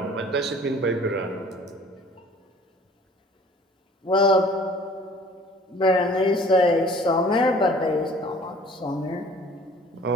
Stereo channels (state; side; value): normal; both; correlation 0.50